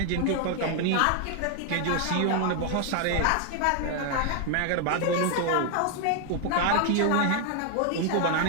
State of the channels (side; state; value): both; different; correlation 0.00